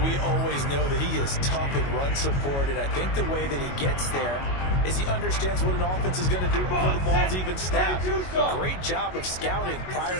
we always know that he is tough in run support, and I think the way that he gets there is he understands what an offense is going to do before the ball's even snapped. Great job of scouting prior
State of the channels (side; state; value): right; late; 22 ms